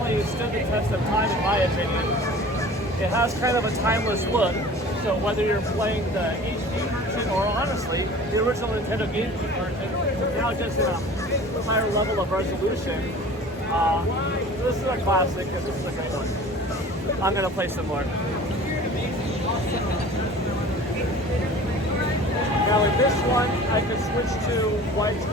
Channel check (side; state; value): both; normal; correlation 0.43